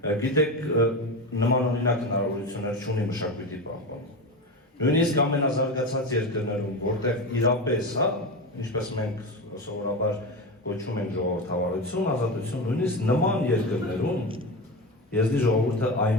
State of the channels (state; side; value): normal; both; correlation 0.21